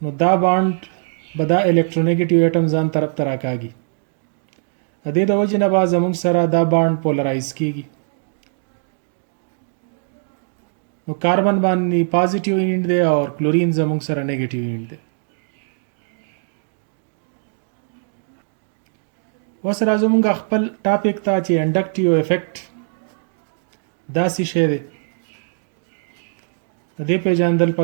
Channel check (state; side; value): silent; left; digital silence